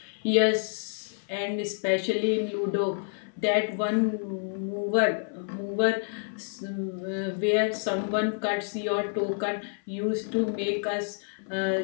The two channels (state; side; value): silent; right; 59 dB below the other